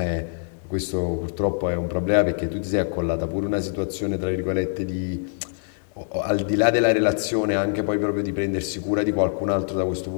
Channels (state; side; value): silent; right; digital silence